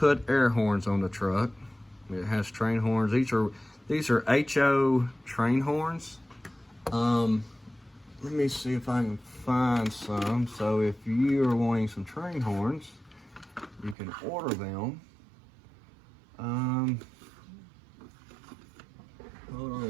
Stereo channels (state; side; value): drops out; left; at 14.0 s